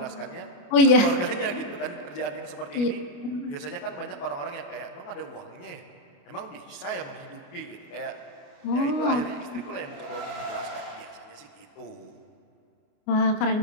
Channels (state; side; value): late; right; 29 ms